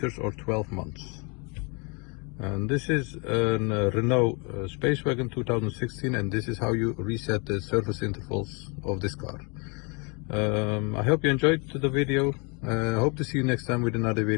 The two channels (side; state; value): right; quieter; 32.4 dB